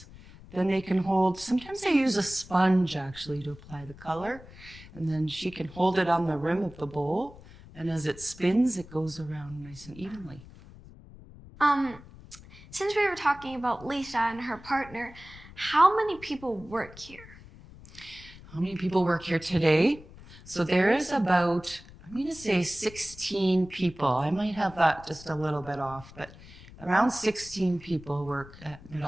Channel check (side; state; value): left; noise; rumble, 19 dB below the sound